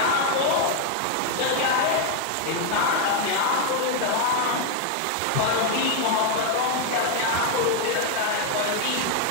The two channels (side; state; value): both; different; correlation 0.01